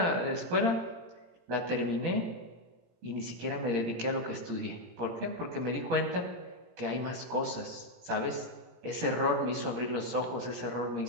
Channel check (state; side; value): late; left; 17 ms